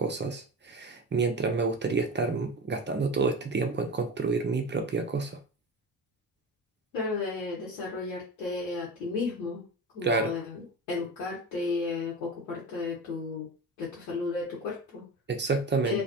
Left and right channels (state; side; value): normal; both; correlation 0.28